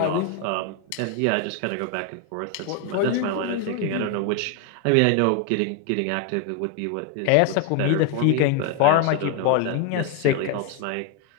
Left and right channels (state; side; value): different; both; correlation 0.01